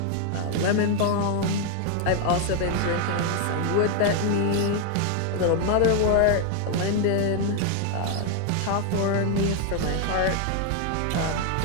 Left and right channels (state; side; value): different; both; correlation 0.00